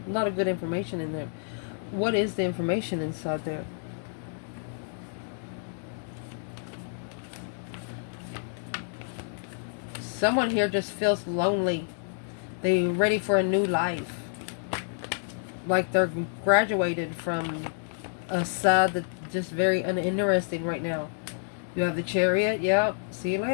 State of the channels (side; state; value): right; silent; digital silence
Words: A lot of good information in there. What is the information inside there? Someone here just feels lonely. They're ready for a new life. Like they're graduated from a side that's just very uninteresting right now. You have the Chariot. Yep. See you